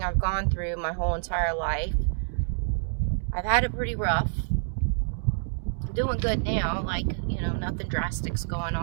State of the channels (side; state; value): left; silent; digital silence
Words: I've gone through my whole entire life. I've had it pretty rough. I'm doing good now, nothing drastic's going